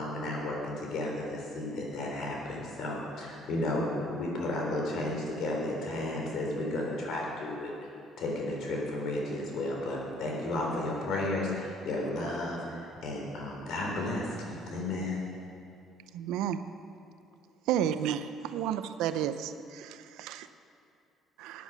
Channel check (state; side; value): normal; both; correlation 0.52